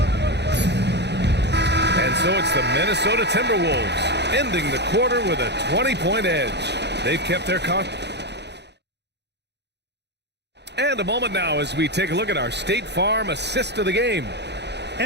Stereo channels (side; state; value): left; late; 0.50 ms